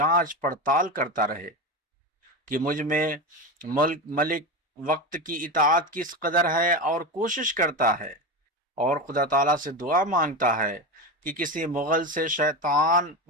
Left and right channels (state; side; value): normal; both; correlation 0.21